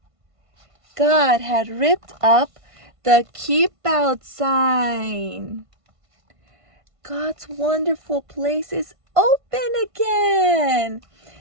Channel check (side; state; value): left; late; 1.5 ms